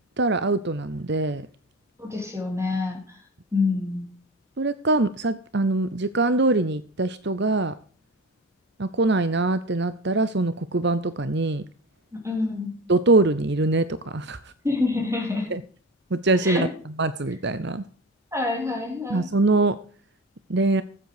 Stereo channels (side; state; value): both; normal; correlation 0.28